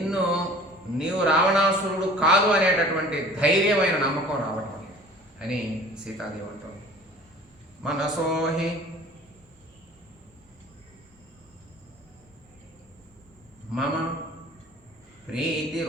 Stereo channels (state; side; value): normal; both; correlation 0.46